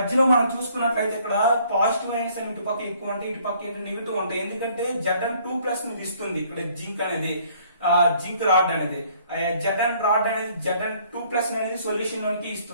మనం చూసుకున్నట్లయితే ఇక్కడ పాజిటివ్ అయన్స్ అని ఇటు పక్క ఎక్కువ ఉంటాయి, ఇటు పక్క ఏంటి నెగిటివ్ ఉంటాయి. ఎందుకంటే Zn2+ ని ఇస్తుంది ఇక్కడ జింక్ అనేది, జింక్ రాడ్ అనేది. Zn రాడ్ అనేది Zn2+ అనేది సొల్యూషన్ లోకి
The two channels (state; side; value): inverted; both; correlation -0.61